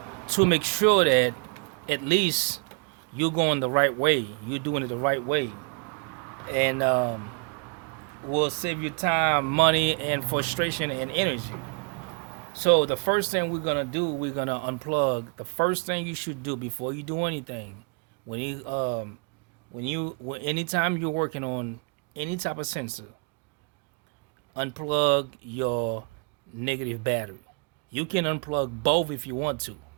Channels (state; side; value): quieter; left; 34.8 dB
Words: to make sure that at least you're going the right way, you're doing it the right way, and will save you time, money, and frustration and energy. So the first thing we're gonna do, we're gonna unplug. The first thing you should do before you do anything, when anytime you're working on any type of sensor, unplug your negative battery. You can unplug both if you want to,